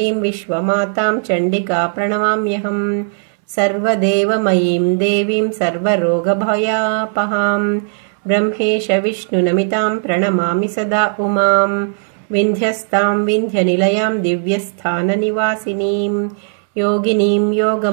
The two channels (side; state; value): left; silent; 69 dB below the other